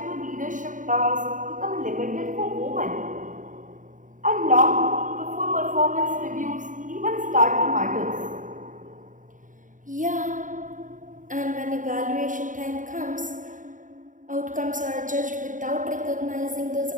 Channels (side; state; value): left; late; 0.38 ms